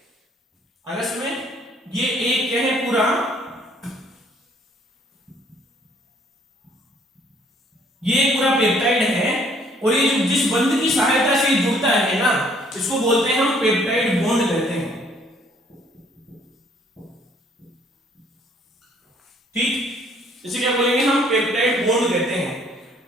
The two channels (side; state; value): both; normal; correlation 0.62